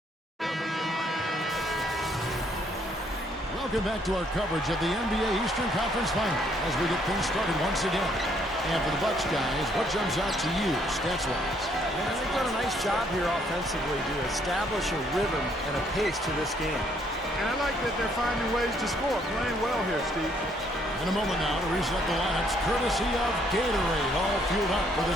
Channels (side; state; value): both; normal; correlation 0.67